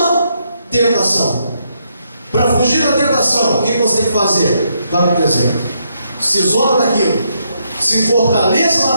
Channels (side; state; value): both; inverted; correlation -0.77